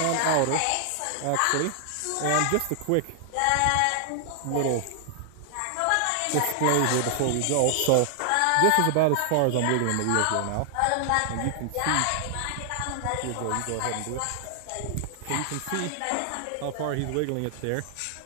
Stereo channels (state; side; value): different; both; correlation 0.00